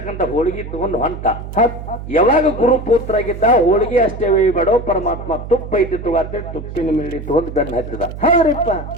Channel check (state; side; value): noise; right; hum, 10 dB below the sound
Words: ಹೋಳಿಗೆ ತಗೊಂಡು ಹೊಂಟ. ಯಾವಾಗ ಗುರು ಪುತ್ರ ಆಗಿದ್ದ, ಹೋಳಿಗೆ ಅಷ್ಟೇ ಬೇಡೋ ಪರಮಾತ್ಮ ತುಪ್ಪ ಐತಿ ತಗೋತೇಳಿ ತುಪ್ಪಿನ ಮೇಲೆ ತಗೊಂಡು ಬೆನ್ನ ಹತ್ತಿದ.